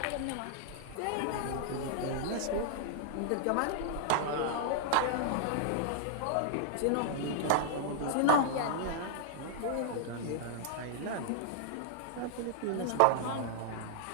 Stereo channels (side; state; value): both; different; correlation -0.01